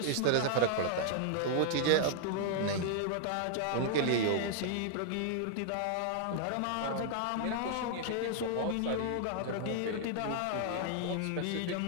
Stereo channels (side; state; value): both; different; correlation 0.00